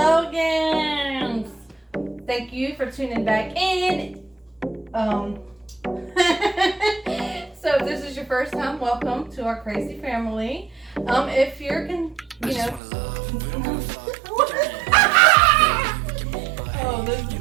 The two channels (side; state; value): left; drops out; at 12.8 s